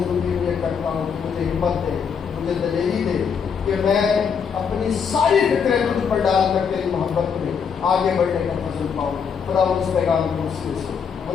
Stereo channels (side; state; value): right; quieter; 6.6 dB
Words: میں کرتا ہوں کہ مجھے ہمت دے، مجھے دلیری دے کہ میں اپنی ساری فکریں تجھ پر ڈال کر تیری محبت میں آگے بڑھنے کا فضل پاؤں. خداوند اس پیغام کے وسیلے سے